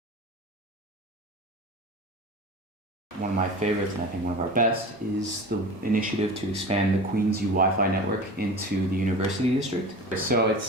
One of my favorites, and I think one of our best, is the initiative to expand the Queens U Wi-Fi network into the University District. So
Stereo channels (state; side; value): normal; both; correlation 0.34